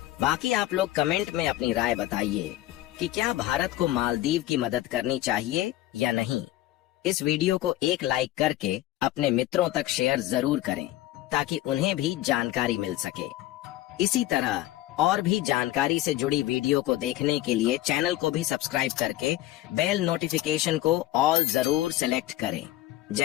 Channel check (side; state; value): right; quieter; 15.4 dB